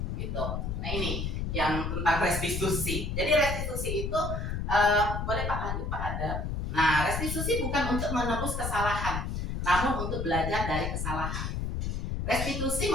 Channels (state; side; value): noise; left; rumble, 2 dB below the sound